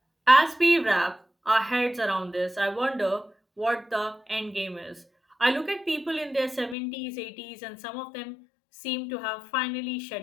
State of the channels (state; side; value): drops out; right; at 6.8 s